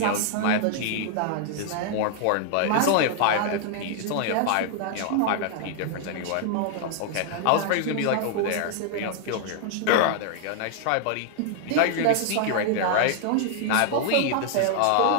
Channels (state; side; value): different; both; correlation 0.00